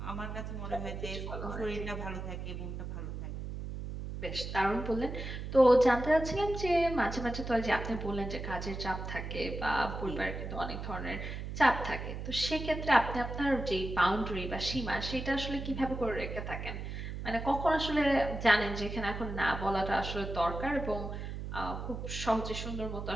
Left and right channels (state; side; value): noise; right; hum, 6 dB below the sound